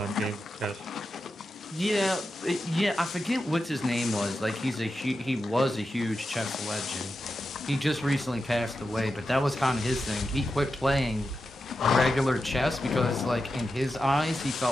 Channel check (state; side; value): normal; both; correlation 0.89